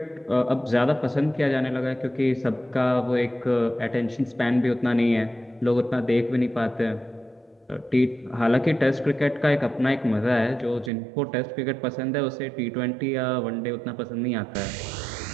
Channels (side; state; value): left; drops out; at 10.9 s